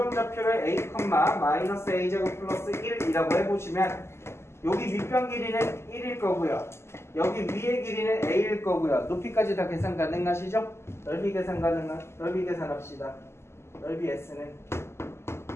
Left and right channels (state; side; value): late; right; 0.12 ms